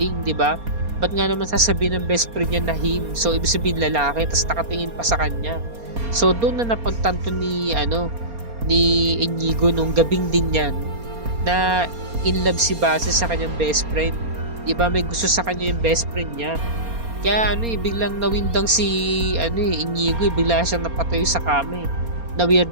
'di ba? Ba't nga naman sasabihin ng best friend niya na him? So ibig sabihin lalaki, tapos nakatingin pa sa kanya. So doon na napagtanto ni Inigo nung gabing din yan na in love si Basil sa kanyang best friend. 'Di ba, may gusto sa kanya yung best friend niya. Kaya biglang nawindang si Inigo, bigla siyang napatayo sa kama.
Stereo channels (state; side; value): late; left; 4.3 ms